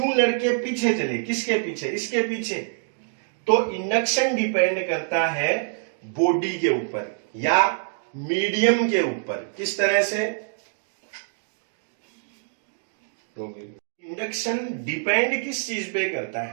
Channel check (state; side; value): silent; left; digital silence